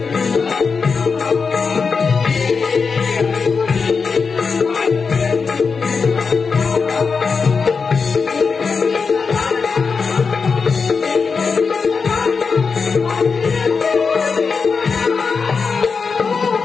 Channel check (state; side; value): quieter; right; 5.1 dB